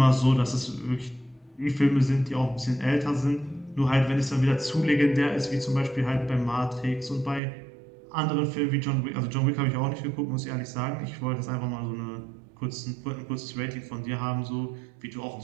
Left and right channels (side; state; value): left; drops out; at 7.4 s